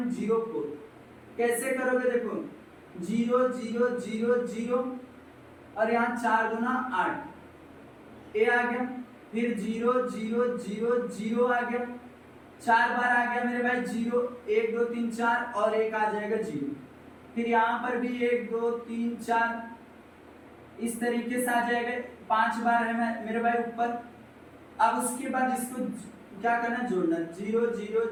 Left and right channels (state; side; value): identical; both; correlation 1.00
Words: कैसे करोगे, देखो 0 0 0 0 और यहाँ 4 दूना 8, ए आ गया, फिर 0 0 0 0 आ गया, 4 बार आ गया मेरे भाई 0, 1 2 3 4 और एक आ जाएगा 0, फिर यहाँ पर भी 1 2 3 4 इस तरीके से आ जाएगा, 5 बार है मेरे भाई ऊपर। अब उसके बाद इसको क्या करना, जोड़ना, 0 0